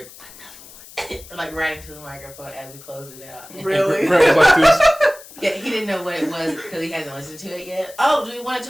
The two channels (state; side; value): noise; left; hiss, 19 dB below the sound